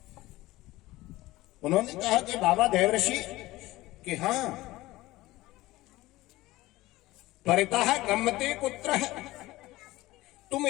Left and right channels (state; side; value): quieter; right; 18.3 dB